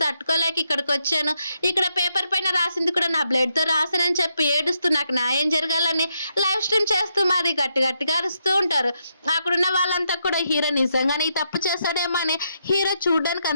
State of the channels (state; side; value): inverted; both; correlation -0.80